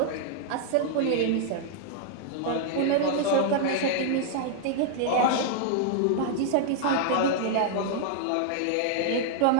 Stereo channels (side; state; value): both; different; correlation -0.01